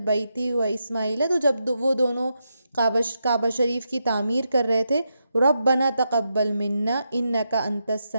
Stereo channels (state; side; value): inverted; both; correlation -0.84